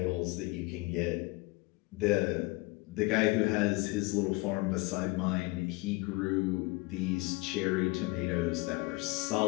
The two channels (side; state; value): right; quieter; 24.5 dB